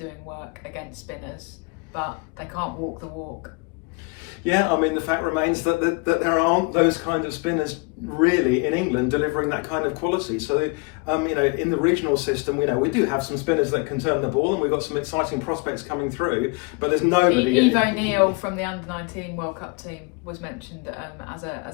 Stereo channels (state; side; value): quieter; right; 29.6 dB